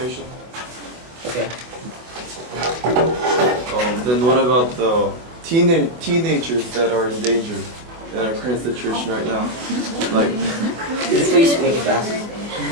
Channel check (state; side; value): late; left; 25 ms